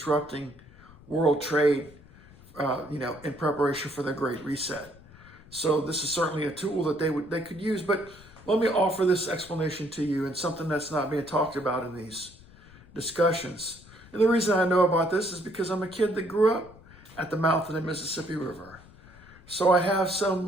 world trade, in preparation for their Great Reset. So this is certainly a tool that they could use. But let me offer this explanation to you, and something that's not being talked about in these discussions. And the reason I know about this is because I'm a kid that grew up at the mouth of the Mississippi River. So I have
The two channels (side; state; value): left; noise; rumble, 22 dB below the sound